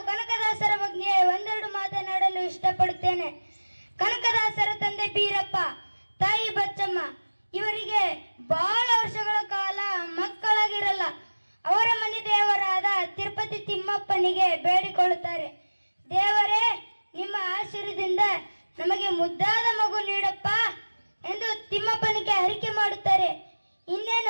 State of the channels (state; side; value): inverted; both; correlation -1.00